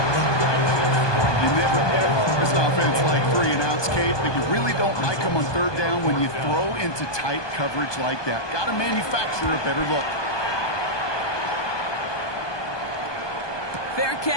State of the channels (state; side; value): late; right; 1.2 ms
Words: You never ever this offense like 3 and outs, Kate, but you really don't like them on 3rd down when you throw into tight coverage like that. Got to manufacture a better look. Fair